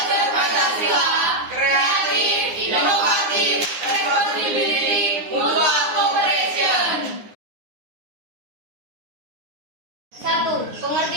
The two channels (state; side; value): late; left; 9.7 ms